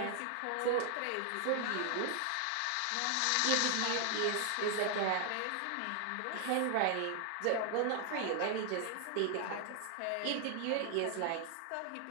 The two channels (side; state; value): both; different; correlation 0.00